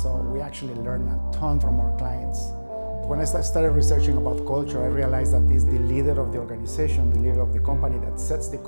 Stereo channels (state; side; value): inverted; both; correlation -1.00